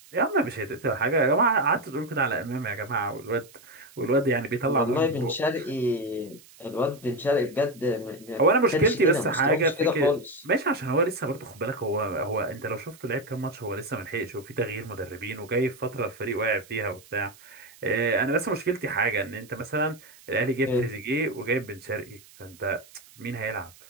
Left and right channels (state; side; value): noise; right; hiss, 24 dB below the sound